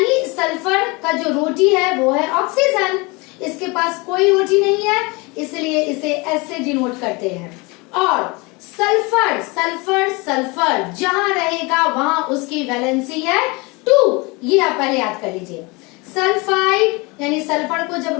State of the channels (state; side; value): quieter; right; 26.7 dB